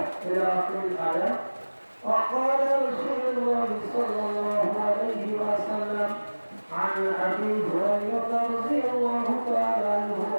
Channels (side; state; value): both; inverted; correlation -1.00